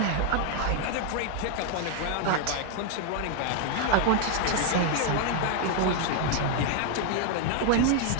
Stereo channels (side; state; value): both; different; correlation 0.00